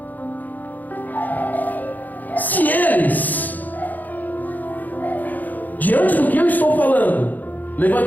Se eles, diante do que eu estou falando,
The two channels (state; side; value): late; right; 0.083 ms